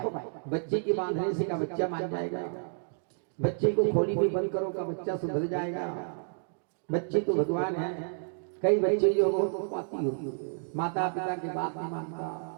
बच्चे के बांधने से का बच्चा मान जाएगा, बच्चे को खोली में बंद करो का बच्चा सुधर जाएगा। बच्चे तो भगवान है। कई बच्चे जो बहुत पाती होती, माता पिता की बात नहीं मानता,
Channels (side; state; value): left; silent; digital silence